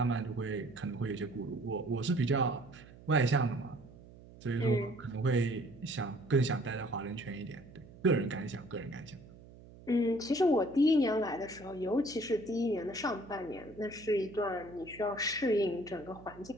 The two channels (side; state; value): right; noise; hum, 20 dB below the sound